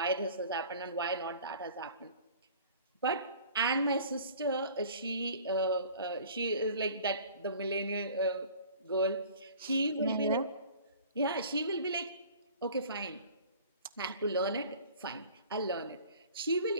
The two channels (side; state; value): both; inverted; correlation -0.47